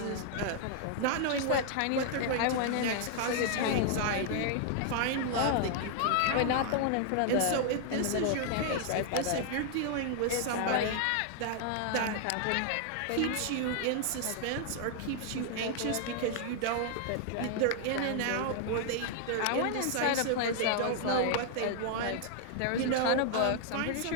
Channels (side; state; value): both; different; correlation 0.00